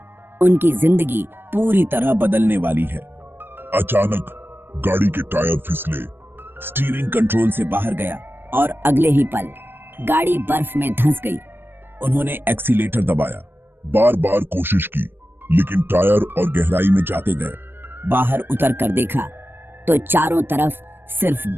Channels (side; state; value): left; late; 0.10 ms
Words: उनकी जिंदगी पूरी तरह बदलने वाली है। अचानक गाड़ी के टायर फिसले, स्टीयरिंग कंट्रोल से बाहर गया और अगले ही पल गाड़ी बर्फ में धंस गई। उन्होंने एक्सीलेटर दबाया, बार बार कोशिश की, लेकिन टायर और गहराई में जाते गए। बाहर उतर कर देखा तो चारों तरफ सिर्फ